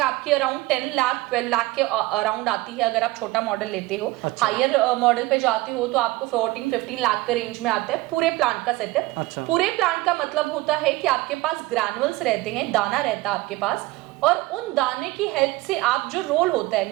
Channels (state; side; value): quieter; left; 19.7 dB